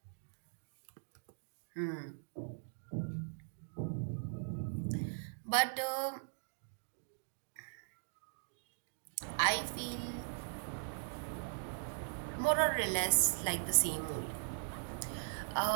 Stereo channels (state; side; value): silent; left; digital silence